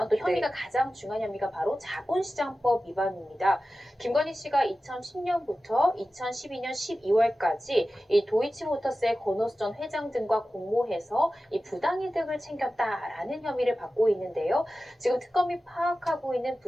또 혐의가 가장 중요한 혐의가 바로 자본시장법 위반입니다. 김건희 씨가 2010년부터 2012년 12월까지 이 도이치모터스의 권오수 전 회장 등과 공모해서 이 부당이득을 챙겼다라는 혐의를 받고 있는데요. 지금 특검이 파악하고 있는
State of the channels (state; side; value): normal; both; correlation 0.94